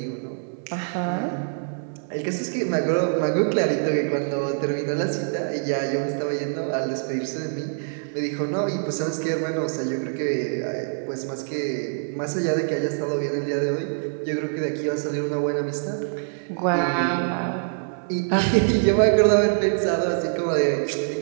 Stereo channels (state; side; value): silent; left; 62 dB below the other